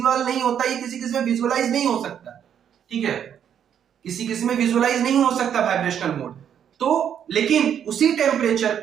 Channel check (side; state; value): left; quieter; 8.9 dB